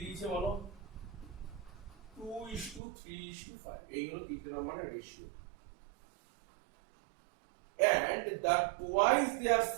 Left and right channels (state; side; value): drops out; left; at 2.8 s